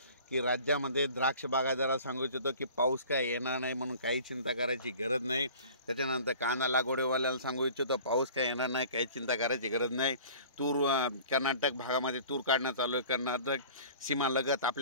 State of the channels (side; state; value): both; inverted; correlation -0.45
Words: की राज्यामध्ये द्राक्ष बागायतदाराला सांगू इच्छितो की पाऊस काय येणार नाही, म्हणून काही चिंता करायची गरज नाही। त्याच्यानंतर कांदा लागवडीवाल्याला सांगू इच्छितो पाऊस काय येणार नाही, काही चिंता करायची गरज नाही। तूर कर्नाटक भागामध्ये तूर काढणं चालू आहे, कर्नाटक सीमालगत